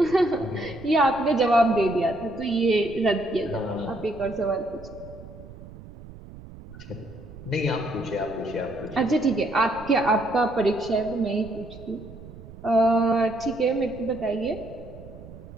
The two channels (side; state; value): right; noise; rumble, 17 dB below the sound